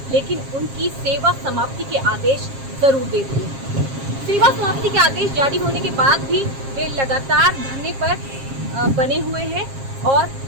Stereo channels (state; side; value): late; left; 7.4 ms